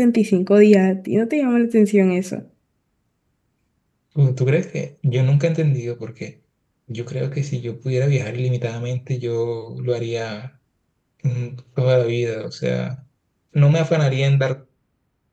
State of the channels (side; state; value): both; identical; correlation 1.00